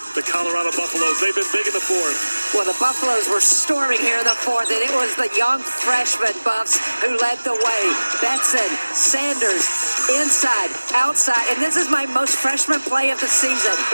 the Colorado Buffaloes. They've been big in the fourth. Well, the Buffaloes were storming here in the fourth, and it was the young freshman Buffs who led the way. Betson, Sanders, inside, outside, and this is my most freshman play of the season.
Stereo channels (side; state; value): both; inverted; correlation -1.00